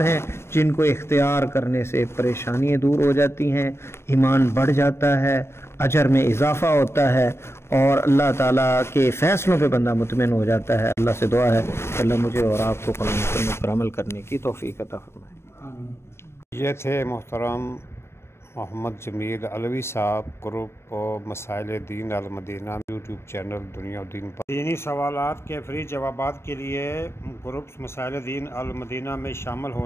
ہیں جن کو اختیار کرنے سے پریشانیاں دور ہو جاتی ہیں، ایمان بڑھ جاتا ہے، اجر میں اضافہ ہوتا ہے، اور اللہ تعالیٰ کے فیصلوں پہ بندہ مطمئن ہو جاتا ہے۔ اللہ سے دعا ہے کہ اللہ مجھے اور آپ کو قرآن سنت پر عمل کرنے کی توفیق عطا فرمائے۔ یہ تھے محترم محمد جمیل علوی صاحب، گروپ مسائل دین المدینہ یوٹیوب چینل دنیا و دین پر دینی سوالات کے فری جوابات کے لیے گروپ مسائل دین المدینہ میں شامل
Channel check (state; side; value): late; right; 0.12 ms